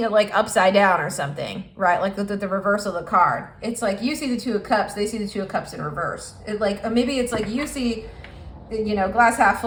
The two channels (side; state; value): both; identical; correlation 1.00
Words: it like upside down or something, right? Like the reverse of the card. It's like you see the Two of Cups, they see the Two of Cups in reverse. It like, maybe it's like you see, you know, glass half